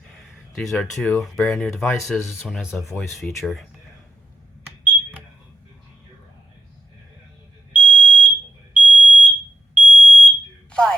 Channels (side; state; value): both; normal; correlation 0.86